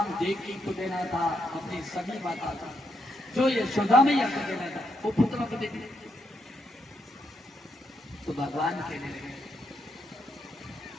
देवकी को देना था अपनी सभी माता का, जो यशोदा मैया को देना था वो पुत्र को दे दिया। तो भगवान कहने लगे,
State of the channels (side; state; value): both; normal; correlation 0.79